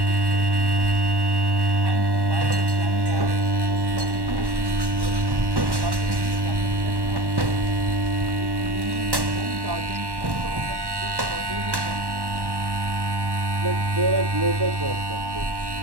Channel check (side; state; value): left; late; 1.1 ms